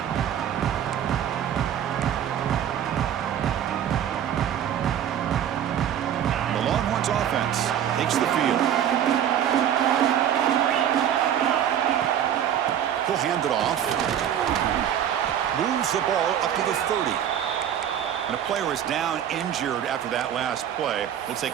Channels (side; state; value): left; quieter; 9.9 dB